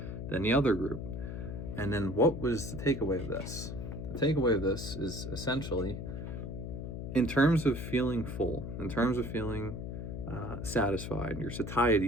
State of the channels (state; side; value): noise; left; hum, 6 dB below the sound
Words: than the other group. And then what was the takeaway of this? The takeaway of this is essentially, in terms of feeling full, in terms of feeling satisfied, your